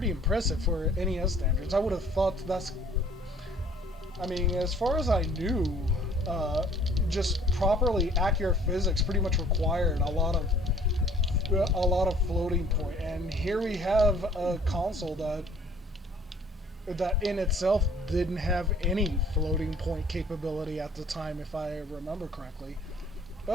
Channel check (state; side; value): normal; both; correlation 0.55